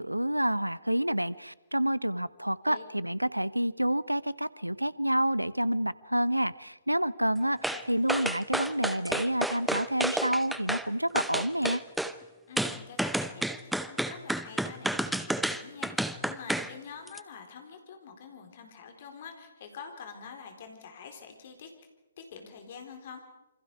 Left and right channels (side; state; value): both; inverted; correlation -0.52